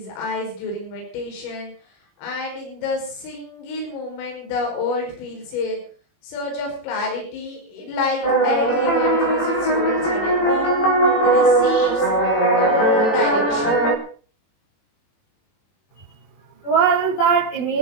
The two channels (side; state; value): right; late; 20 ms